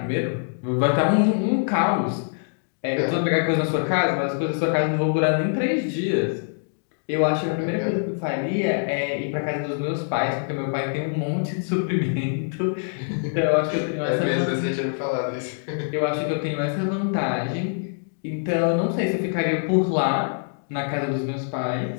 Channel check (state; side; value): silent; right; digital silence